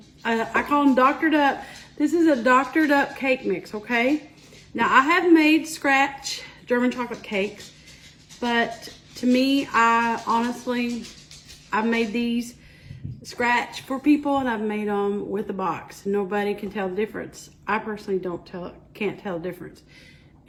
I call them doctored up. This is a doctored up cake mix, okay? Now I have made scratch German chocolate cakes, but to me, I've made these scratch for people and I've made them with a box. Nobody can tell the difference. I personally can't tell the difference.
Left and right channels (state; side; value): identical; both; correlation 1.00